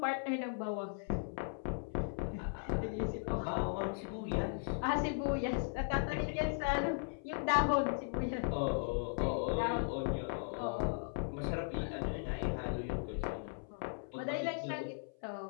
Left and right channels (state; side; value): silent; right; 53 dB below the other